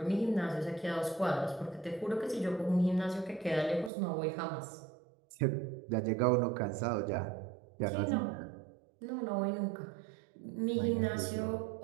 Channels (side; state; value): left; drops out; at 3.9 s